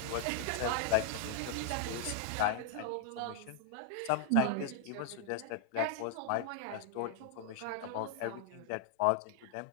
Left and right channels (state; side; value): different; both; correlation 0.00